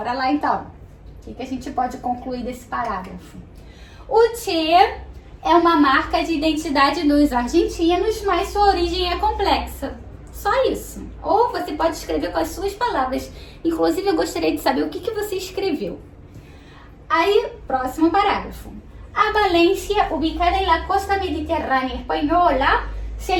lá, então. O que a gente pode concluir desse parágrafo? O Che é uma marca de identidade dos argentinos, mas sua origem é complexa. Só isso. Ou você pode escrever com as suas palavras. Inclusive, eu gostaria de saber o que você escreveu. Aí, próximo parágrafo. A Valência, ubicada en la costa mediterrânea espanhola, se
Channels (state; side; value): identical; both; correlation 1.00